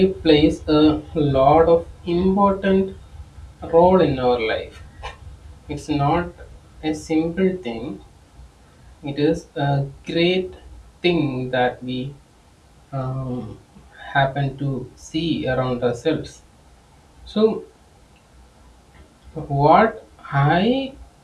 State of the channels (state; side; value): identical; both; correlation 1.00